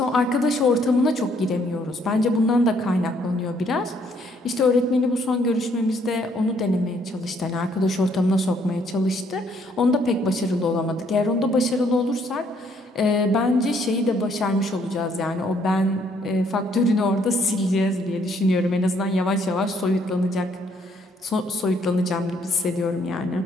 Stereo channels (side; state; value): both; normal; correlation 0.67